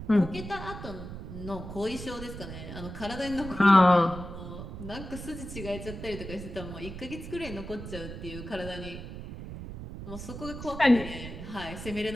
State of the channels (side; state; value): right; noise; rumble, 10 dB below the sound